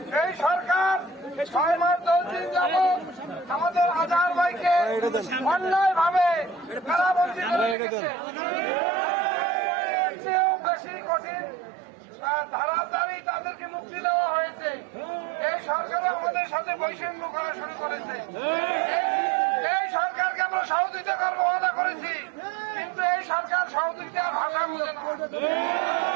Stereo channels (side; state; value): left; drops out; at 7.8 s